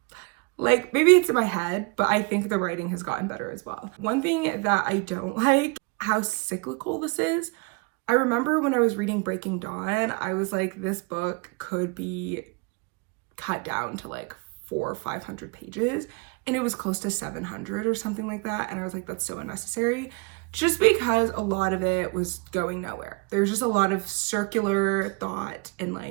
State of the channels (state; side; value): quieter; left; 31.0 dB